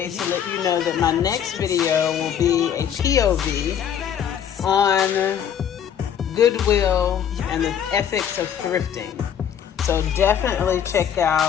let you know that my next video will be a POV on Goodwill and the ethics of thrifting. So definitely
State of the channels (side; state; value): right; quieter; 8.9 dB